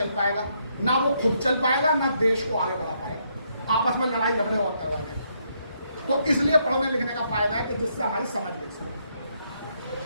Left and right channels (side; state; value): both; inverted; correlation -0.75